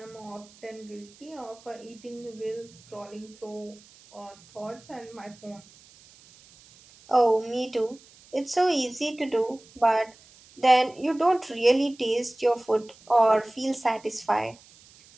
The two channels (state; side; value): noise; right; hiss, 25 dB below the sound